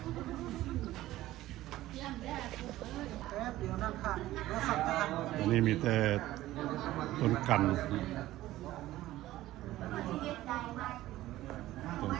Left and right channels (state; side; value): quieter; left; 15.6 dB